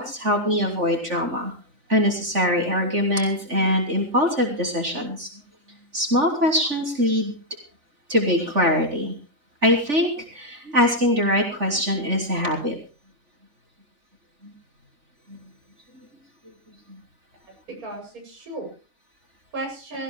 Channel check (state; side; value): late; left; 3.5 ms